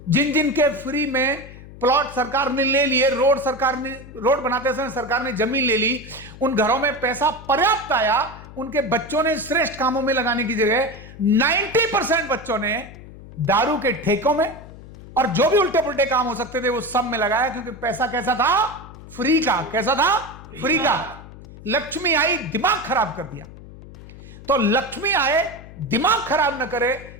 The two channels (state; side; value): noise; left; hum, 17 dB below the sound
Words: जिन जिन के फ्री में प्लॉट सरकार ने ले लिए, रोड बनाते समय सरकार ने जमीन ले ली, उन घरों में पैसा पर्याप्त आया, उनके बच्चों ने श्रेष्ठ कामों में लगाने की जगह 90% बच्चों ने दारू के ठेकों में और जो भी उल्टे पुल्टे काम हो सकते थे वो सब में लगाया, क्योंकि पैसा कैसा था? फ्री का। कैसा था? फ्री का। लक्ष्मी आई, दिमाग खराब कर दिया। तो लक्ष्मी आए, दिमाग खराब न